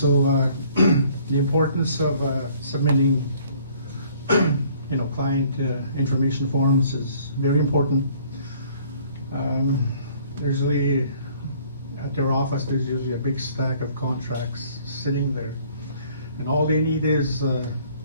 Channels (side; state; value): both; inverted; correlation -0.58